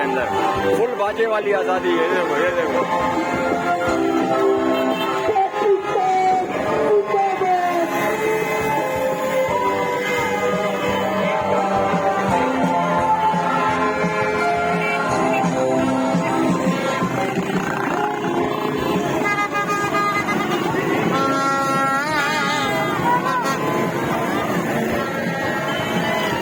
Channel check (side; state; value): both; identical; correlation 1.00